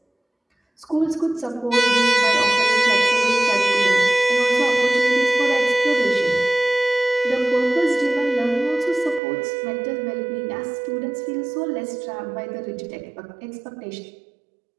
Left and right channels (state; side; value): drops out; left; at 9.2 s